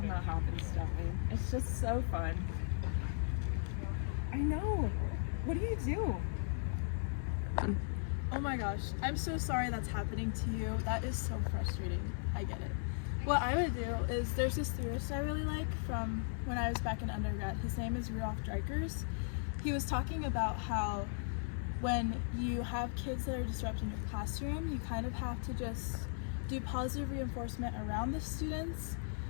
that happens, don't we? It's just so fun. I know. What do you do? Oh my gosh, I'm so sorry that's happening to you. That is so frustrating. I get it. What I would do is, there's this theorist I really like from when I was back in undergrad. His name is Rudolf Dreikurs. He was talking about how when you have kids that are disrupting your classroom, you kind of have to just do positive reinforcement around the students.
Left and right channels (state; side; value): silent; right; 53 dB below the other